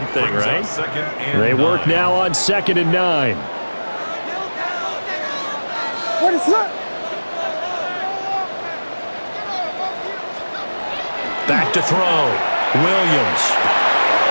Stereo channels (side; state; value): both; inverted; correlation -1.00